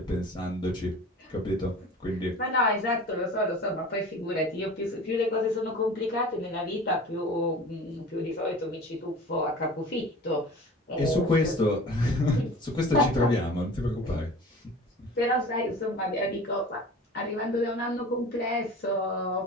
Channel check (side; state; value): both; normal; correlation 0.40